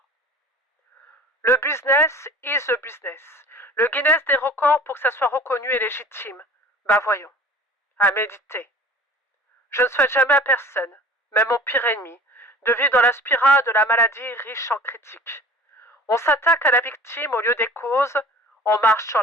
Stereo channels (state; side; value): normal; both; correlation 0.43